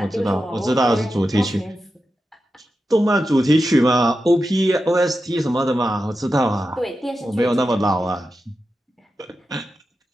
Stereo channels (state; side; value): normal; both; correlation 0.90